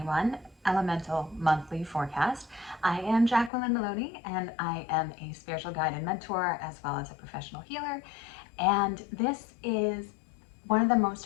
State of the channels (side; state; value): right; drops out; at 3.5 s